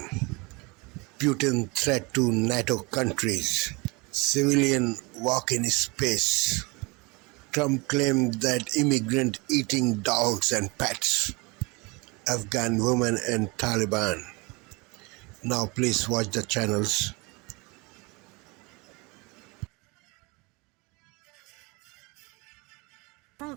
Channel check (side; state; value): left; quieter; 26.8 dB